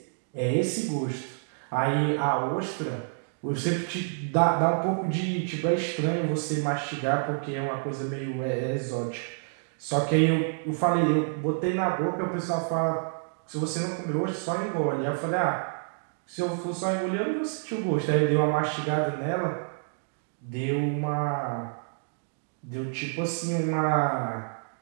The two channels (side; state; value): left; silent; digital silence